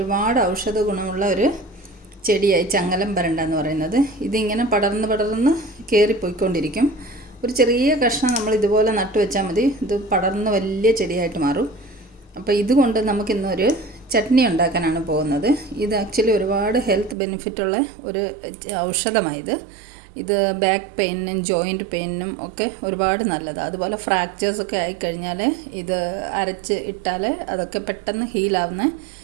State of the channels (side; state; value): left; drops out; at 17.2 s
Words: ഔഷധ ഗുണമുള്ള ഒരു ചെടിയായി ചങ്ങലം പരണ്ട എന്ന് പറയുന്നത്. ഇതിങ്ങനെ പടർന്ന് കയറിപ്പോയിക്കൊണ്ടിരിക്കും. ഒരു ചെറിയ കഷ്ണം നമ്മൾ ഇതുപോലെ നട്ടു വെച്ചാൽ മതി, ഇത് പടർന്ന് വലിയ ചെടിയായിട്ട് മാറും. അപ്പോൾ ഇതുകൊണ്ട് നമുക്കിന്നൊരു ചട്നി ഉണ്ടാക്കാനാണ് പോകുന്നത്. ഇത് ആക്ച്വലി ഒരുപാട് ഹെൽത്ത് ബെനിഫിറ്റുള്ള ഒരു ഔഷധമായത്. ഇത് ബാക്ക് പെയിനും ജോയിൻറ്റ് പെയിനും ഒക്കെ ഒരുപാട് നല്ലതാണ്. അതുപോലെ ഫ്രാക്ചേഴ്സൊക്കെ ആയിക്കഴിഞ്ഞാൽ ഇത് അരച്ച് ഇട്ടാൽ അതൊക്കെ പെട്ടെന്ന് ഹീലാവുന്ന